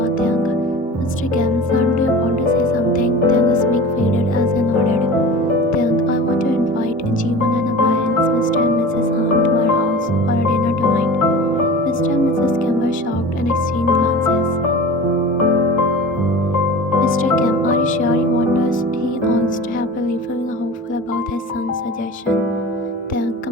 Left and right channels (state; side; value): normal; both; correlation 0.36